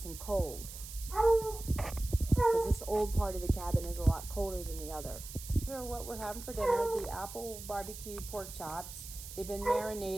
and cold. Because this old part of the cabin is a lot colder than the other. These are what we're having for dinner, the apple barbecue pork chops. They've been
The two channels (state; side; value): noise; right; hiss, 12 dB below the sound